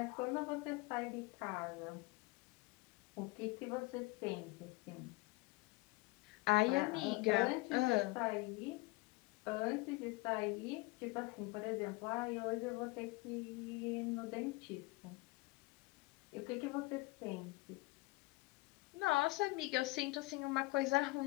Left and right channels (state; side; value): quieter; right; 23.2 dB